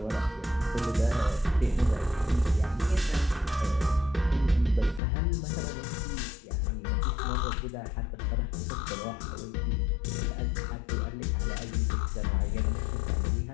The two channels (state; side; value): drops out; right; at 5.0 s